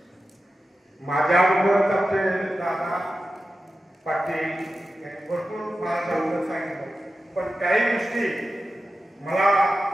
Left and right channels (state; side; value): normal; both; correlation 0.92